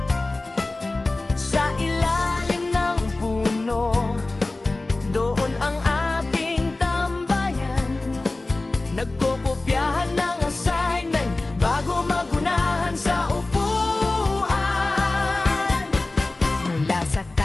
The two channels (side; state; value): right; quieter; 3.1 dB